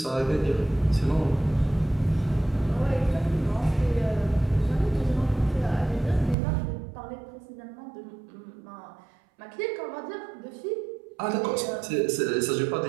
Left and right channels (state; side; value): drops out; left; at 6.4 s